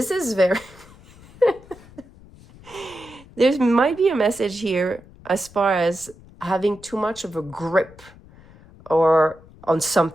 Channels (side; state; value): left; noise; rumble, 23 dB below the sound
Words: is very... There might be a message here as far as having too much of a grip or on